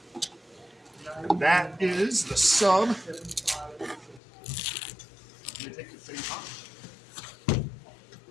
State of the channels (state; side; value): drops out; right; at 4.2 s